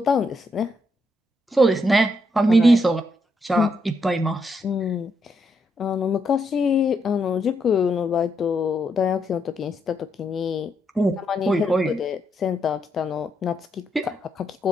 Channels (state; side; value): normal; both; correlation 0.79